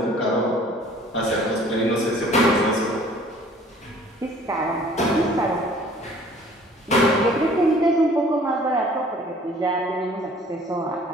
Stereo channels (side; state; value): both; normal; correlation 0.53